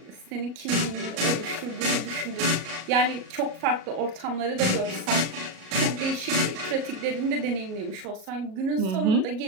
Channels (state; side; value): late; left; 37 ms